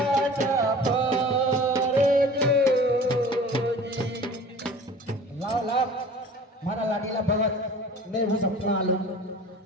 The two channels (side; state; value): both; normal; correlation 0.43